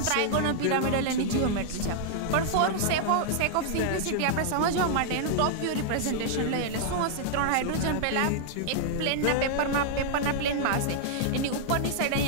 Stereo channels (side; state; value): both; different; correlation -0.01